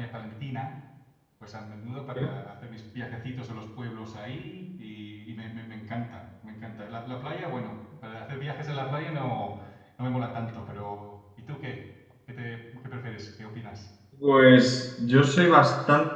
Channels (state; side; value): identical; both; correlation 1.00